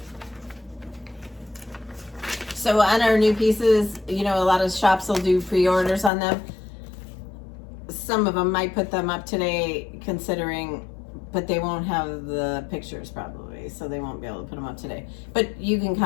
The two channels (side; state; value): right; drops out; at 6.1 s